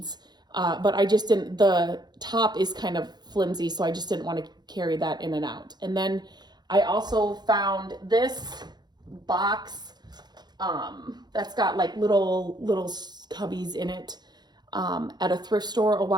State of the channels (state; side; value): late; left; 0.20 ms